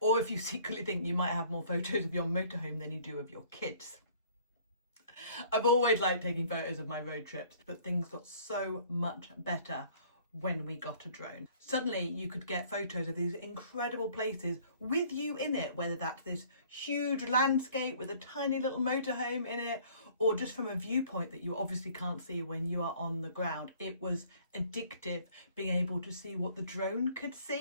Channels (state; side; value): inverted; both; correlation -0.55